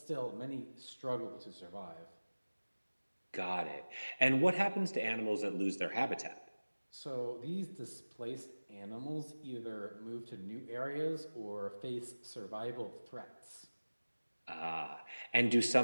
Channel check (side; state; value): both; inverted; correlation -1.00